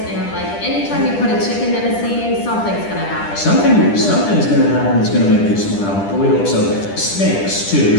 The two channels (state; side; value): late; right; 10 ms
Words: and like anytime you put a chicken in a scene, something's gonna happen. Something's gonna happen that's gonna make you smile. But we hope so. Snakes too.